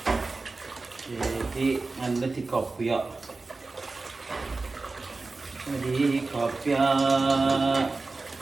Jadi anda di kopi ya. Di kopi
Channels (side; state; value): left; quieter; 3.6 dB